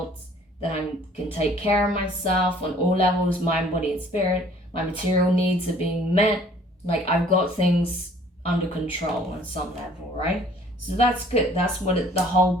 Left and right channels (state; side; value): normal; both; correlation 0.55